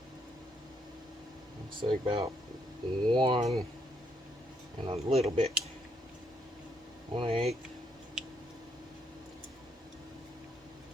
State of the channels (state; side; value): normal; both; correlation 0.74